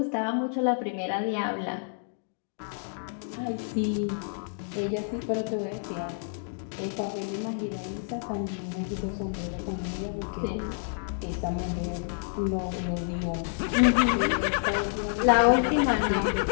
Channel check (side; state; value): right; silent; digital silence